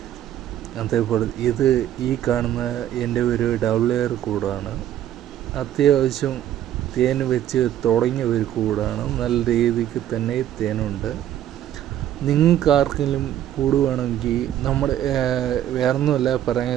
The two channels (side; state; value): left; quieter; 11.6 dB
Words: അതേപോലെ ഇത് ഈ കാണുന്ന എൻ്റെ ഒരു ഡബിൾ എയർ കൂടാണ്. അത്യാവശ്യം തേൻ വെച്ച് തുടങ്ങിയ ഒരു കൂടാണ്. നല്ല രീതിക്ക് തന്നെ തേനുണ്ട്. നിങ്ങൾക്ക് ആർക്കെങ്കിലും കൂട് വേണമെങ്കിൽ നമ്മുടെ വേറൊന്നുമല്ല